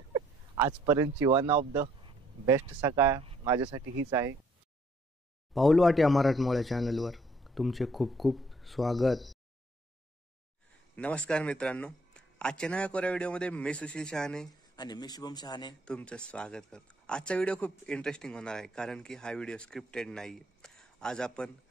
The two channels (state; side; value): normal; both; correlation 0.65